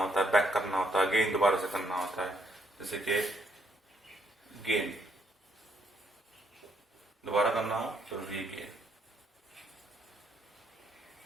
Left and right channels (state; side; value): normal; both; correlation 0.73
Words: है, बैक करना होता है, गेन दोबारा से करना होता है, जैसे कि गेन दोबारा करना हो तो रीगेन।